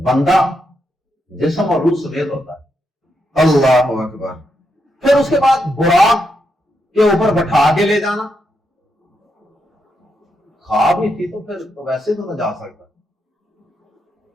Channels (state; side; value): normal; both; correlation 0.82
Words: جسم اور روح سمیت ہوتا ہے۔ اللہ اکبر۔ پھر اس کے بعد براق کے اوپر بٹھا کے لے جانا، خواب ہی تھی تو پھر تو ویسے تو نہ جا سکتا،